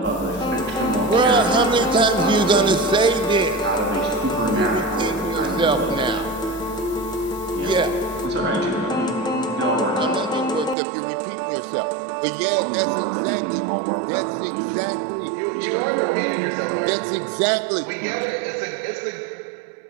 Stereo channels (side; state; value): left; drops out; at 10.8 s